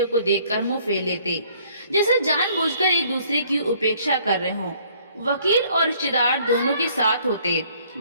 को देखकर मुंह फेर लेते, जैसे जानबूझकर एक दूसरे की उपेक्षा कर रहे हों। वकील और रिश्तेदार दोनों के साथ होते।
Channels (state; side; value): inverted; both; correlation -0.61